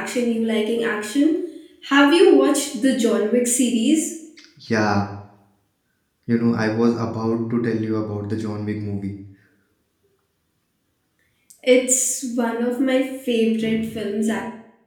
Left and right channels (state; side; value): identical; both; correlation 1.00